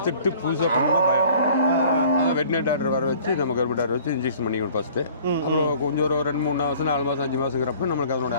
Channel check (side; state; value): both; inverted; correlation -0.51